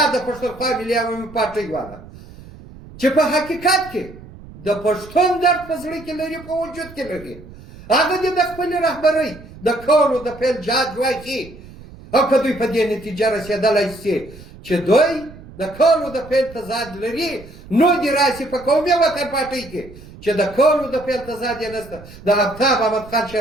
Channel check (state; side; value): noise; right; rumble, 18 dB below the sound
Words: د پښتونخوا ملي عوامي پارټۍ والا چې په حقیقت کې د پښتون درد په زړه کې لري، په وجود کې لري، هغه دې د خپلې رهبرۍ د کولو د پیل جهاد واخلي. او که دوی په دې نتیجه رسېدلی شي چې دوی د کولو د پیل تضاد لري، نو دې راسي په قومي وطن پارټۍ کې چې د کولو د پیل تضاد یې نشته، د آفتاب احمد خان